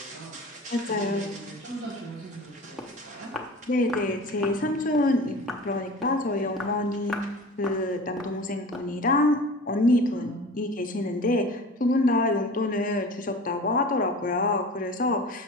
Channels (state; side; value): normal; both; correlation 0.38